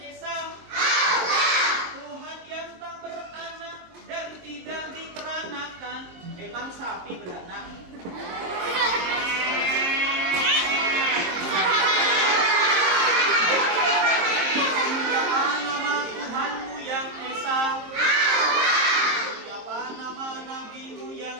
Tuhan yang tak beranak dan tidak diperanakan. Emang sapi beranak? Siapa nama Tuhanmu yang Esa? Siapa nama nabimu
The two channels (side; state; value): left; late; 23 ms